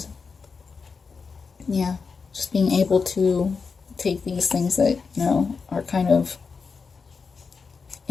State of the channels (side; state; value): right; quieter; 5.1 dB